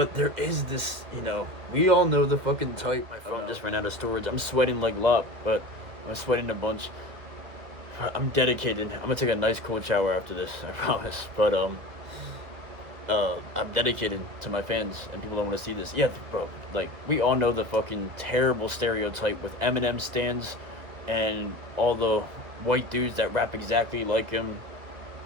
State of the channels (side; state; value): left; late; 2.2 ms